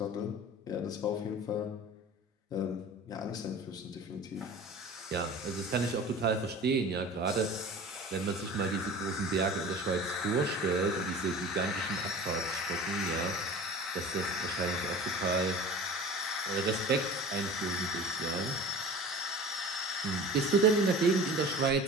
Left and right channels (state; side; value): normal; both; correlation 0.39